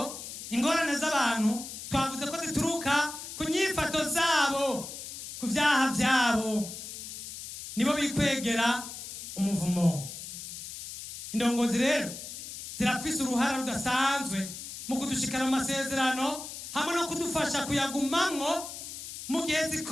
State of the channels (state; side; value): noise; left; hiss, 10 dB below the sound